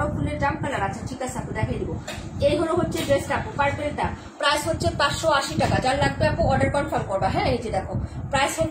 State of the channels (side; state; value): both; identical; correlation 1.00